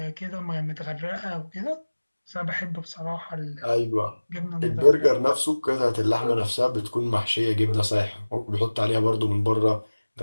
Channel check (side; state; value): both; inverted; correlation -1.00